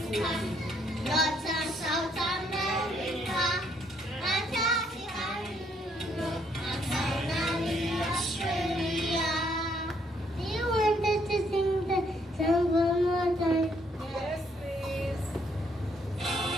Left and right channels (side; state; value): both; normal; correlation 0.70